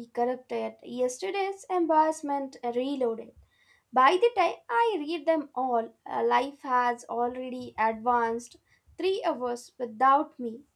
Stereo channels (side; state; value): both; identical; correlation 1.00